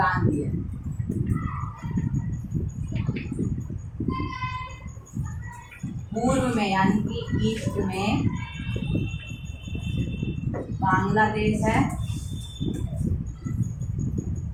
भी है। पूर्व में यानी कि ईस्ट में बांग्लादेश है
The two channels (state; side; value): identical; both; correlation 1.00